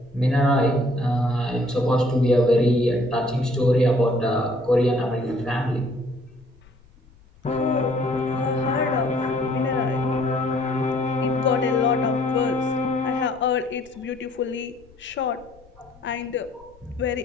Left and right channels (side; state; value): left; noise; rumble, 28 dB below the sound